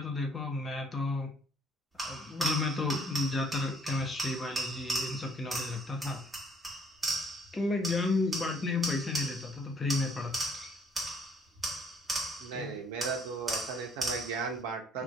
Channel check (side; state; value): both; normal; correlation 0.62